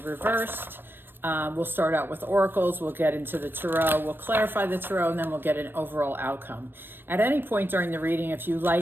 We'll start out with oracles, we'll get into the tarot, we'll clarify the tarot, and then we'll get an overall outcome. At any point during the reading, if you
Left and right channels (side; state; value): left; late; 0.097 ms